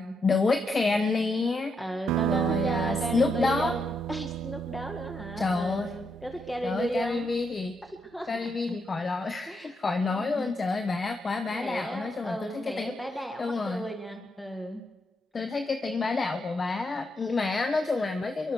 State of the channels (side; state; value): both; normal; correlation 0.80